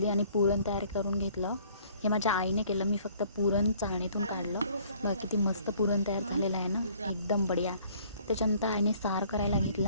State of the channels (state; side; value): inverted; both; correlation -0.58